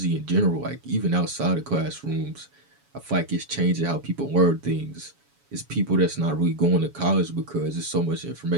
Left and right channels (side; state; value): left; late; 7.1 ms